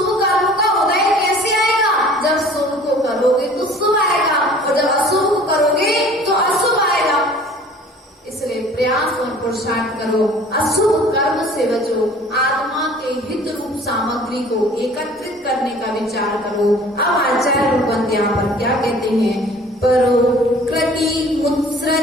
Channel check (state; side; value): normal; both; correlation 0.49